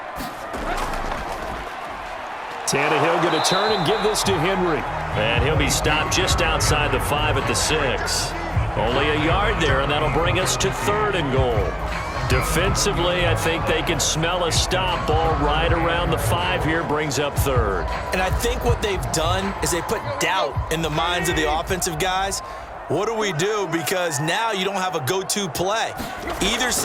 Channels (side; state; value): both; identical; correlation 1.00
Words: Tannehill going to turn and give this to Henry. And he'll be stopped just outside the 5 at the 6. Only a yard there, and that'll bring us to third and goal. Defensively, I think they can smell a stop. Ball right around the 5 here, brings up third. And I think what they've done is they put doubt in the minds of the offensive guys. What do we do? Because now you don't have a go-to play. Either